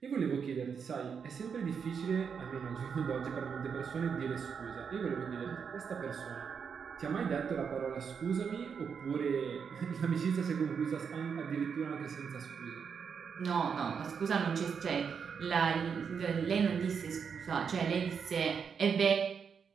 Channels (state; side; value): quieter; left; 6.5 dB